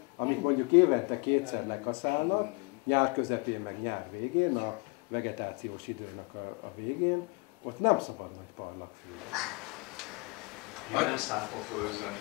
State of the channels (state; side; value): quieter; right; 29.6 dB